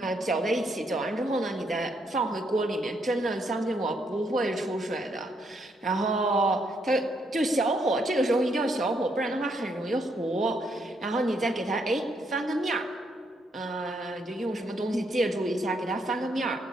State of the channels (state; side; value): normal; both; correlation 0.75